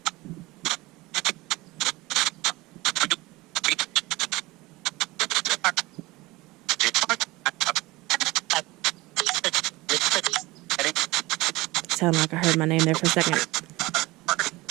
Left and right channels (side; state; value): left; quieter; 20.9 dB